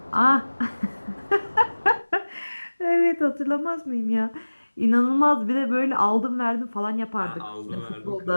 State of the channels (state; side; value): inverted; both; correlation -1.00